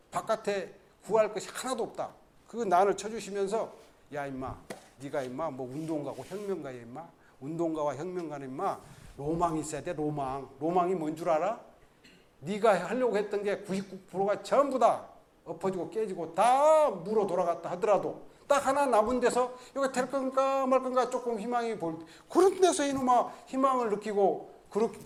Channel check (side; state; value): both; identical; correlation 1.00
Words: 바깥에 구할 것이 하나도 없다. 그거 난을 쳐주시면서, 야 임마, 네가 임마 뭐 운동가고 혁명가야 임마. 운동가와 혁명가는 임마 로망이 있어야 돼. 로망이 뭔 줄 알아? 네가 하려고 했던 게 99%가 전부 다 엎어지고 깨지고 다 물어 돌아갔다 하더라도 딱 하나 남은 데서 이거 될 건가 말 건가 조금 희망이 보일 때, 그런 데서 이놈아 희망을 느끼고,